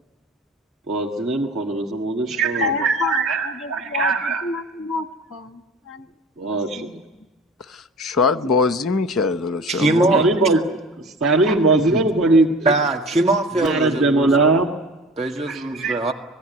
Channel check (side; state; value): both; normal; correlation 0.39